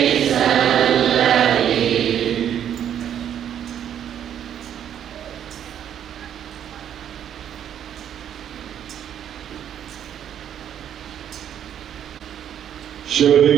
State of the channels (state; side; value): quieter; left; 9.7 dB